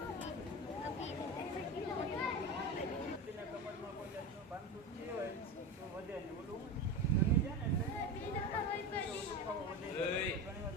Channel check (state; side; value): normal; both; correlation 0.24